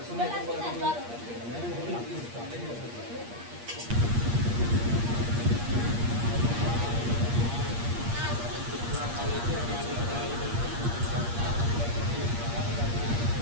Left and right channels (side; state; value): left; late; 8.5 ms